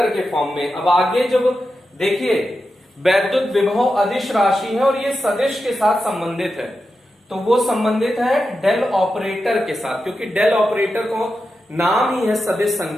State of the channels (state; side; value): normal; both; correlation 0.90